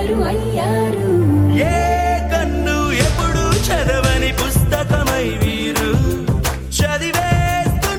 అయ్యారు. ఏ కన్ను ఎప్పుడు చదవని పుస్తకమై వీరు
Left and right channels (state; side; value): identical; both; correlation 1.00